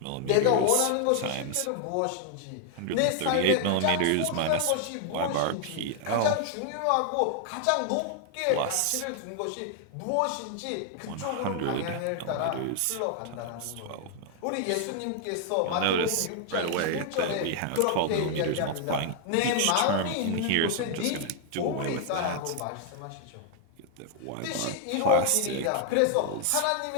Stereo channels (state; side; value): different; both; correlation 0.00